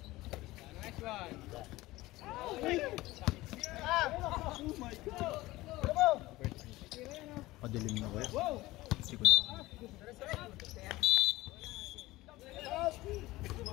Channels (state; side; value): quieter; right; 18.6 dB